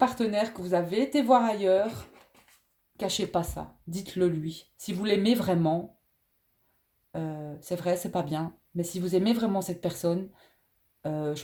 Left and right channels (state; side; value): identical; both; correlation 1.00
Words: que vous avez été voir ailleurs, cachez pas ça. Dites-le lui. Si vous l'aimez vraiment, c'est vrai, c'est pas bien. Mais si vous aimez vraiment cette personne, je